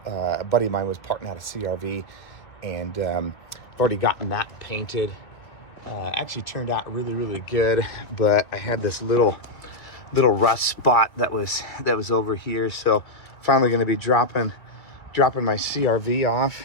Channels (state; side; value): late; right; 2.3 ms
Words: a buddy of mine was parting out a CRV, and I've already gotten that painted. Actually turned out really good, but I had this little rust spot that was over here. So finally going to be dropping my CRV off